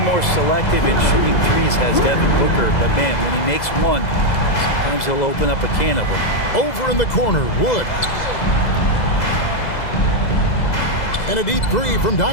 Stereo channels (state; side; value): late; right; 2.0 ms